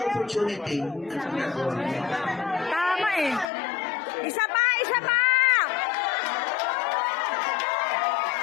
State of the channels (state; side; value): drops out; right; at 3.5 s